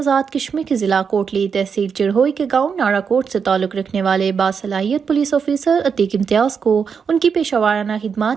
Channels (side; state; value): left; quieter; 6.3 dB